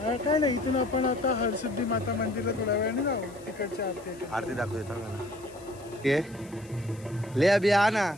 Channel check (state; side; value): noise; left; hiss, 24 dB below the sound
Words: काय नाही, इथून आपण आता हरसिद्धी माता मंदिरला थोड्या वेळाने जाऊ. तिकडची आरती दाखवतो ना. ये ले अभी आना,